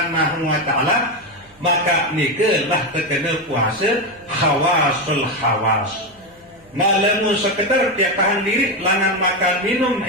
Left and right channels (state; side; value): noise; right; hum, 30 dB below the sound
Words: wa taala, maka nikelah terkena puasa khawasul khawas. Nah lamun sekedar tiap tahan diri langan makan minum